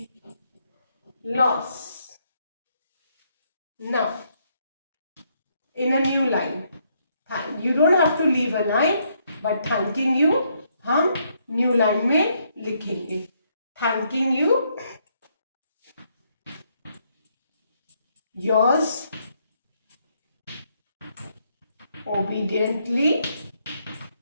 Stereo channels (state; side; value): inverted; both; correlation -0.73